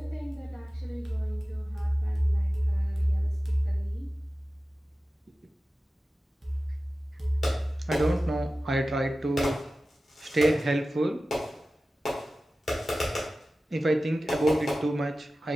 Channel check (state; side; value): normal; both; correlation 0.95